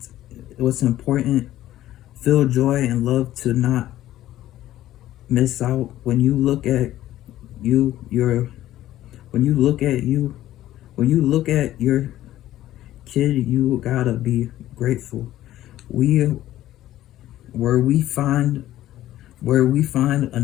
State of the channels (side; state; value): right; quieter; 13.9 dB